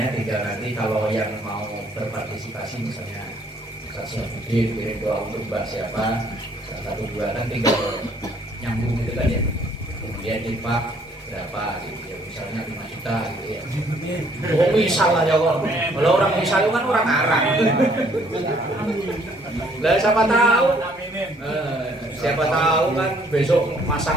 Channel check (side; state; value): both; normal; correlation 0.63